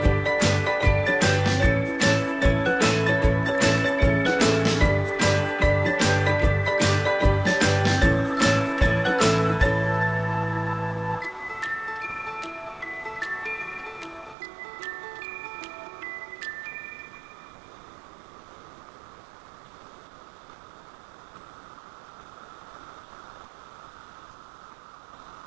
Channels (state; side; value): drops out; left; at 14.4 s